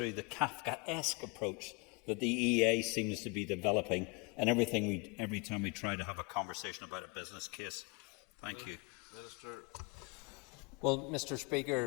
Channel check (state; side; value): quieter; right; 30.4 dB